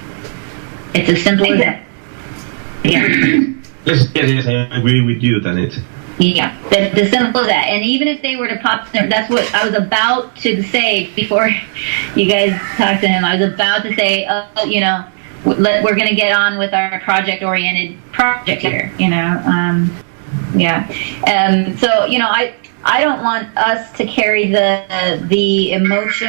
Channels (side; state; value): left; silent; 64 dB below the other